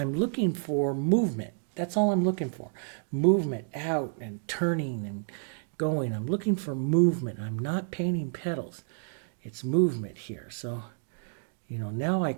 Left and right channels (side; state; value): left; silent; 58 dB below the other